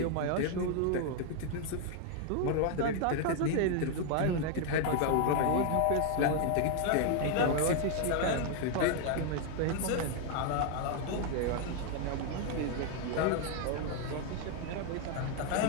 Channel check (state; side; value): different; both; correlation 0.00